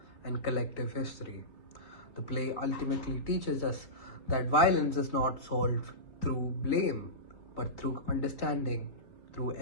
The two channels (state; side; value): late; right; 3.2 ms